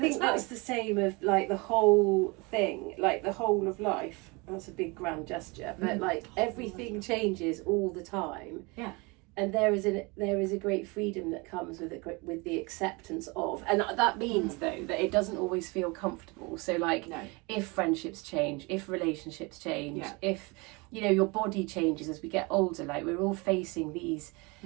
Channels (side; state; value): left; quieter; 27.3 dB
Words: that's the same of like the whole thing, like the whole of life. That's a big grand gesture, but like everything changes all the time. Yeah. And there is a great freedom that comes with the acceptance of, and that means though that it doesn't always feel comfortable. So like, if friendships change, if relationships change, if your body changes as we get older, like we're all facing these